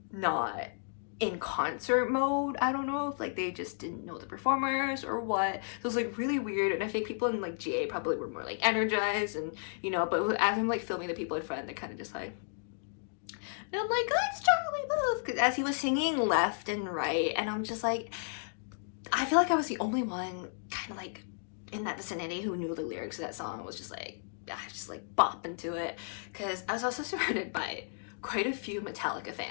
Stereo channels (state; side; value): silent; right; digital silence